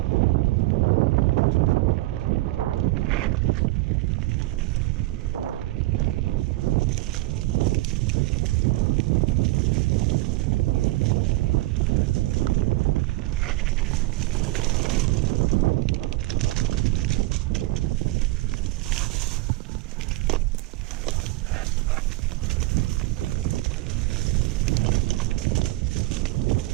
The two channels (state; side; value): quieter; left; 19.3 dB